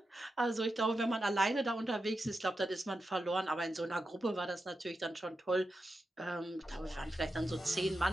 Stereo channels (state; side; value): normal; both; correlation 0.89